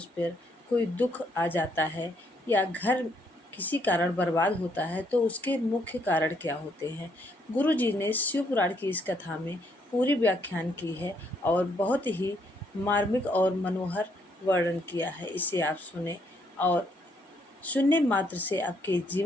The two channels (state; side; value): normal; both; correlation 0.71